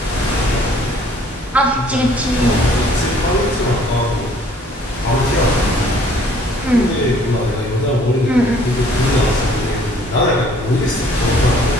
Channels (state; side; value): normal; both; correlation 0.58